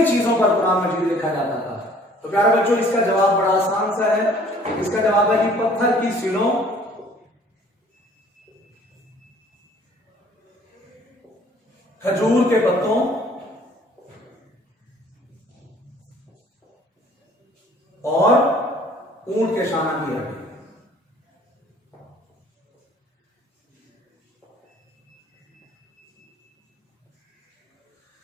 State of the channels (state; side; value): normal; both; correlation 0.55